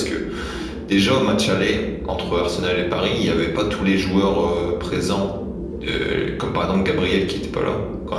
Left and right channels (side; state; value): both; identical; correlation 1.00